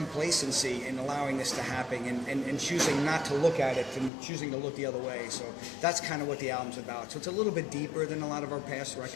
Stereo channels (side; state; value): right; drops out; at 4.1 s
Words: in allowing this to happen and choosing not to look at it and choosing to look the other way. So that's kind of what the album's about. So it's a little bit deeper than a lot of our past